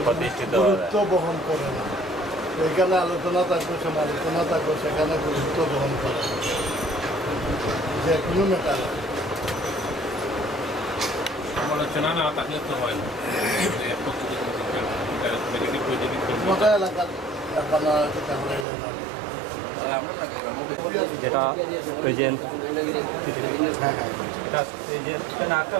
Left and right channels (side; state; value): left; drops out; at 18.7 s